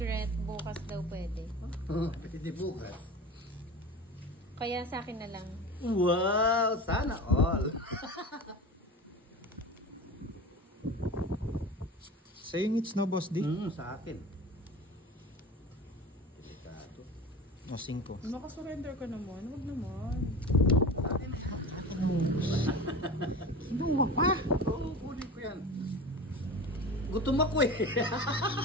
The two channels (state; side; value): normal; both; correlation 0.32